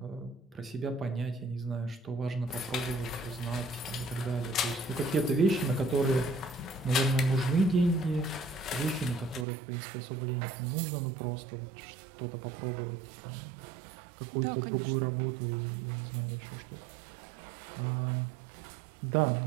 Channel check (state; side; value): drops out; left; at 9.5 s